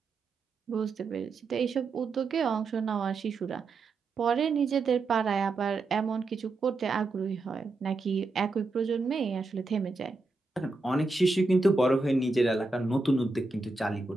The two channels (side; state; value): left; quieter; 3.6 dB